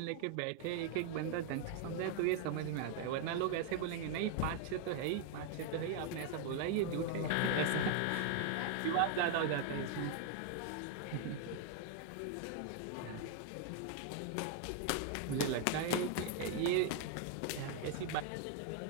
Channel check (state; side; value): different; both; correlation 0.00